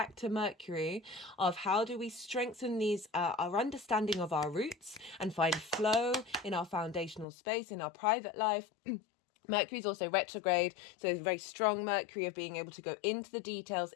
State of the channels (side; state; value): right; drops out; at 7.2 s